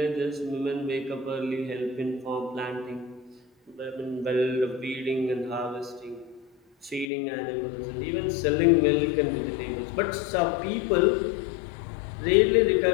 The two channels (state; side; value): drops out; right; at 7.1 s